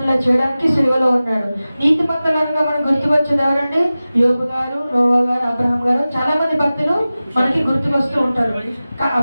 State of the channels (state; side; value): inverted; both; correlation -0.96